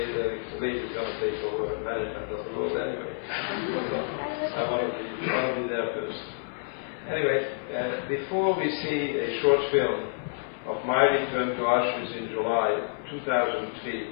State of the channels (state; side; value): silent; right; 59 dB below the other